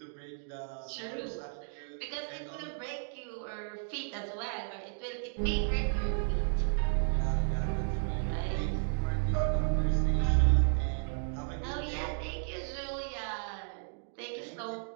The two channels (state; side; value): silent; left; 56 dB below the other